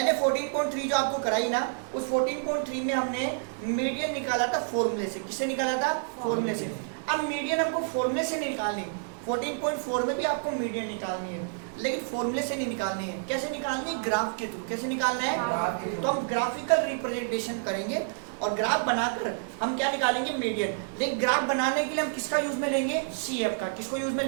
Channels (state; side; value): silent; left; digital silence